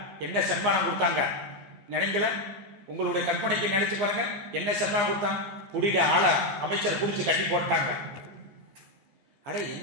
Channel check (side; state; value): left; late; 15 ms